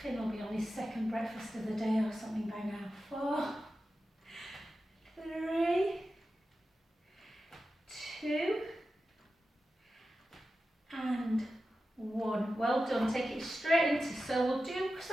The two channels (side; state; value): both; normal; correlation 0.92